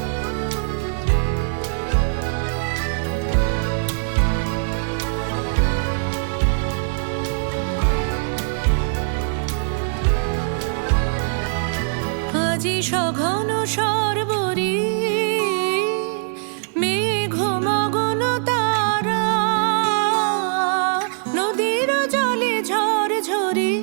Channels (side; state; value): left; silent; digital silence